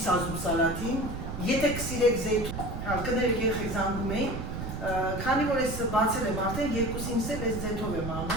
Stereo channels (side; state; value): right; noise; rumble, 6 dB below the sound